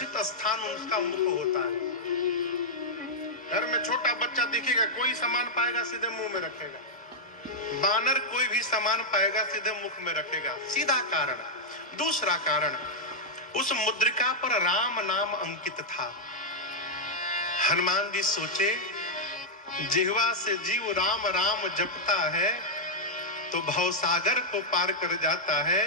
स्थान उसका मुख होता है। घर में छोटा बच्चा दिखेगा, कोई सामान पाएगा सीधे मुंह में रखेगा, बानर कोई भी सामान पाएगा सीधे मुख में रखेगा, सीधा कारण। दूसरा कारण, उस मुद्रिका पर राम नाम अंकित था। हनुमान जी सोचे, जिह्वा से जीव राम राम जपता है तो भवसागर को पार कर जाता है।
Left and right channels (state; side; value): normal; both; correlation -0.04